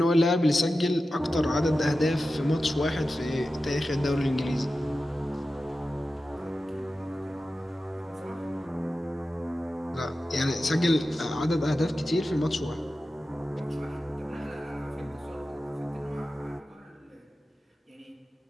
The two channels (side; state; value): both; normal; correlation 0.93